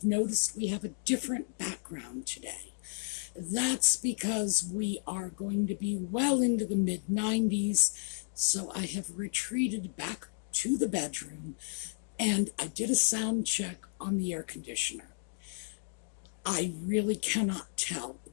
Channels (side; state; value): right; silent; digital silence